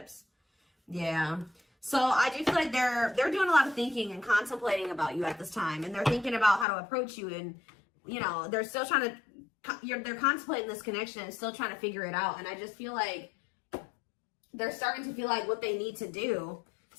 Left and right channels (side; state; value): right; drops out; at 6.7 s